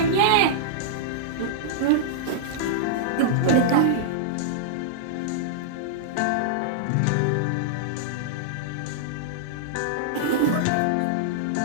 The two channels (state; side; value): different; both; correlation -0.02